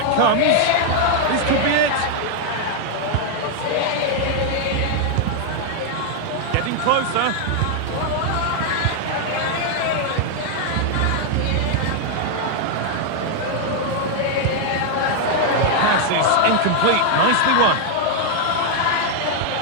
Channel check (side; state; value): both; different; correlation 0.00